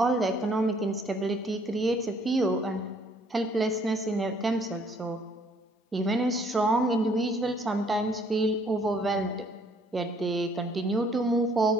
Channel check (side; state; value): both; normal; correlation 0.63